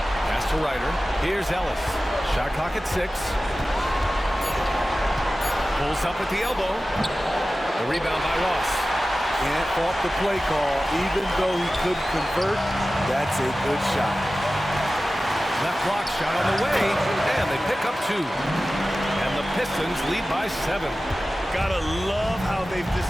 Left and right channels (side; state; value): both; normal; correlation 0.95